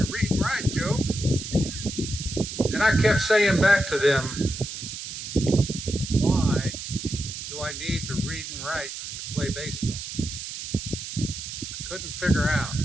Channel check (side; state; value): right; noise; hiss, 8 dB below the sound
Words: read and write, Joe." And I kept saying back to them, "Why do I need to read and write to play baseball?" I couldn't figure out.